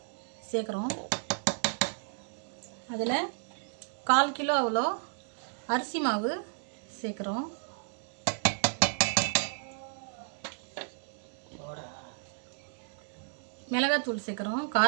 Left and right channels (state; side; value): silent; left; 56 dB below the other